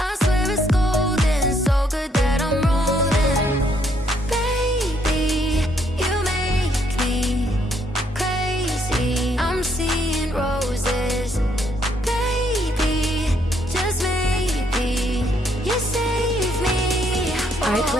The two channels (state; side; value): normal; both; correlation 0.71